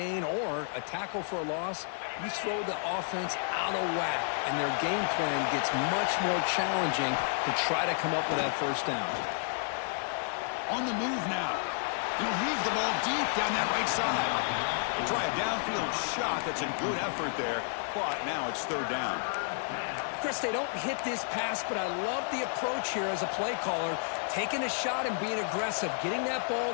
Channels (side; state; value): right; silent; digital silence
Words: or a tackle for a loss, you throw the offense out of whack, and their game plan gets much more challenging to try to come up with that first down. On the move now. He'll heave the ball deep down that right side. They try a downfield shot. That's a good effort there. But now it's third down. Chris, they don't hit this pass, but I love the approach here as a play caller. Taking a shot and being aggressive, getting that ball